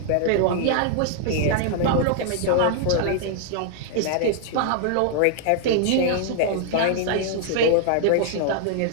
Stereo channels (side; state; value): both; different; correlation -0.01